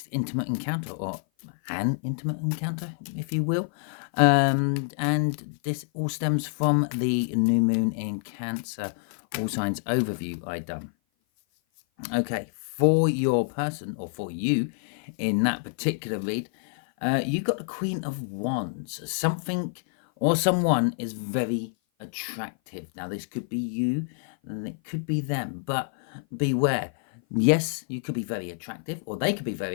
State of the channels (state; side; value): silent; right; 56 dB below the other